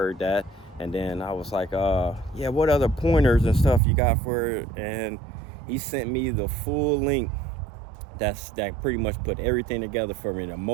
that. And then I was like, yeah, what other pointers and stuff you got for it? And he sent me the full link that pretty much put everything together for me. The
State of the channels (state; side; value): drops out; left; at 3.8 s